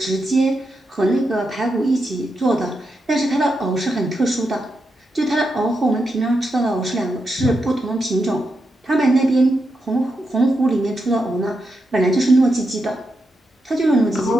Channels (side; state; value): both; normal; correlation 0.85